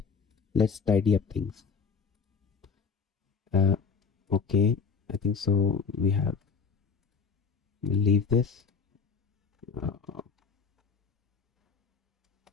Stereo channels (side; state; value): right; quieter; 5.5 dB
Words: let's tidy up things. Okay, I think so we'll leave this